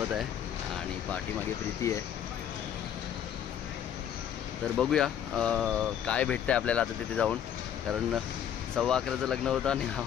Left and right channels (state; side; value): quieter; right; 9.5 dB